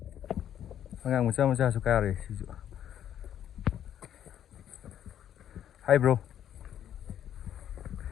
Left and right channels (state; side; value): quieter; right; 10.3 dB